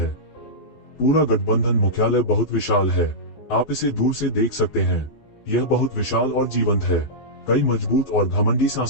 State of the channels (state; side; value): late; right; 14 ms